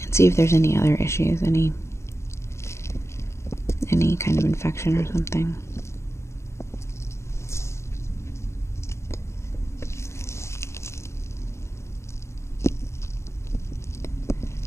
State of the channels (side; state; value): right; late; 0.13 ms